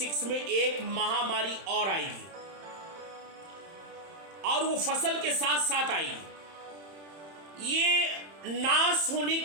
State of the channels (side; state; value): left; late; 31 ms